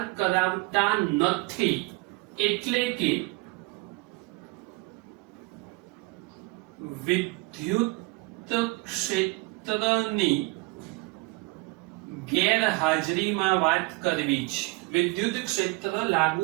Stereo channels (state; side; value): quieter; left; 24.9 dB